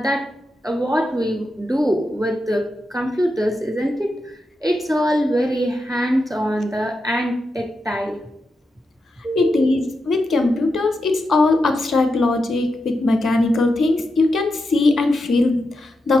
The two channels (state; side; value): normal; both; correlation 0.87